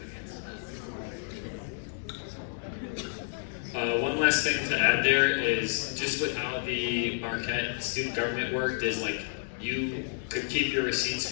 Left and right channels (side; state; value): right; silent; digital silence